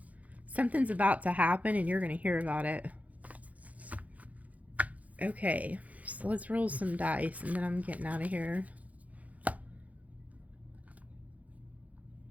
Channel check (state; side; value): late; left; 0.071 ms